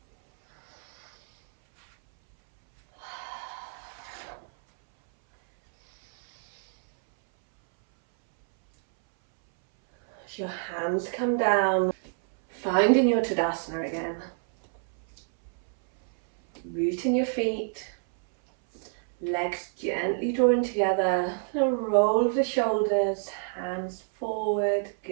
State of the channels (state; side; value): silent; left; 60 dB below the other